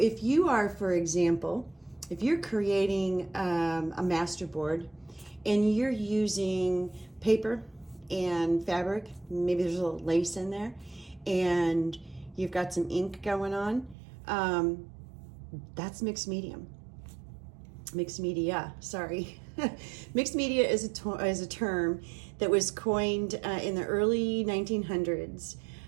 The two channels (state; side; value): drops out; left; at 14.0 s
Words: you are, for example, if you're creating a masterboard and you're using paper and fabric, maybe there's a little lace in there, and you've got some ink going on, that's mixed media. Mixed media is a term that was coined in the early 1900s,